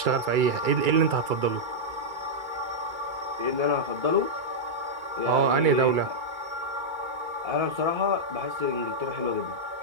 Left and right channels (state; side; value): late; left; 2.3 ms